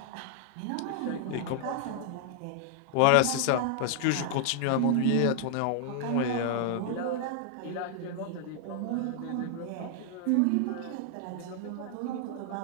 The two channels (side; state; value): both; different; correlation 0.00